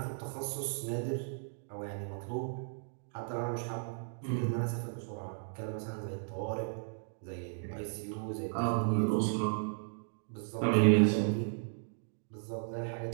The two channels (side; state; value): left; silent; digital silence